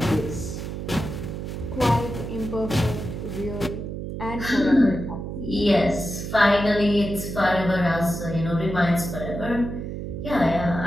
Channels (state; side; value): noise; right; hum, 6 dB below the sound